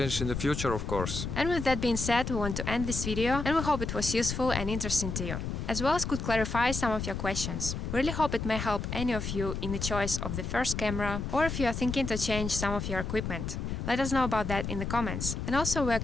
in the future, of course. And with that being said, we want to end this video, and we hope it was useful and interesting to you, as well as could clarify some of your questions. We really hope it may help any of you in the choice of the first camera, or if you are thinking to change some of your equipment. Let us know about that in the comments. And also we are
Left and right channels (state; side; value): noise; left; rumble, 4 dB below the sound